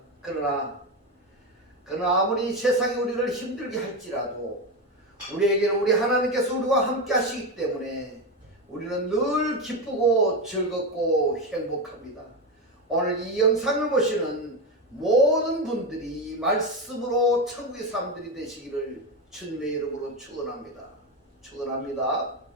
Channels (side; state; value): both; normal; correlation 0.14